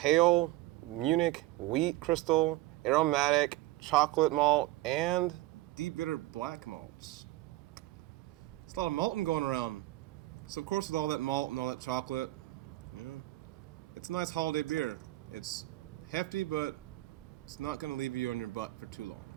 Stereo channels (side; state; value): left; quieter; 17.8 dB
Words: Munich wheat crystal, aromatic chocolate malt, and deep bitter black malts. It's a lot of malting going around. So of course with all that malt and all that chocolate, it's a nice holiday beer. It's hefty, but it's not going to leave you on your butt for too long.